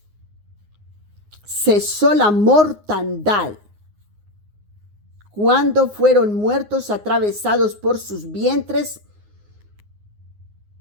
cesó la mortandad. cuando fueron muertos atravesados por sus vientres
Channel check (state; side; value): late; left; 9.6 ms